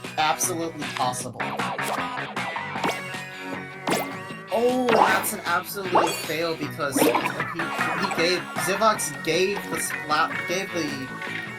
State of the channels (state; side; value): identical; both; correlation 1.00